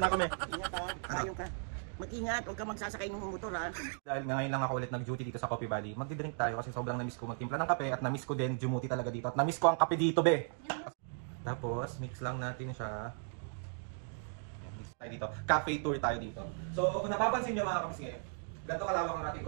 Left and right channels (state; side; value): silent; left; 54 dB below the other